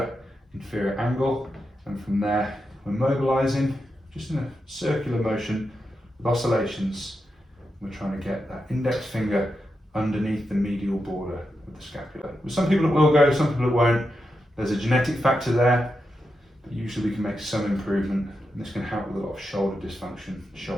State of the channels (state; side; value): normal; both; correlation 0.87